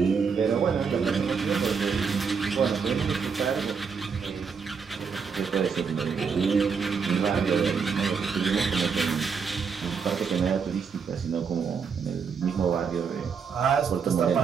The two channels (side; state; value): left; quieter; 5.9 dB